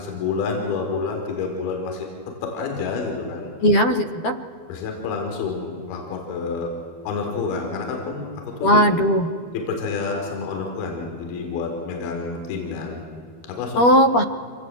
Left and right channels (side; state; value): right; late; 12 ms